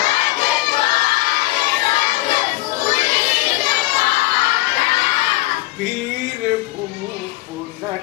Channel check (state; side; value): quieter; right; 19.3 dB